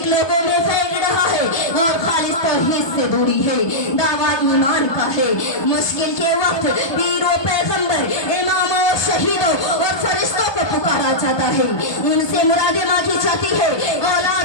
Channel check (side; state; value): right; late; 1.2 ms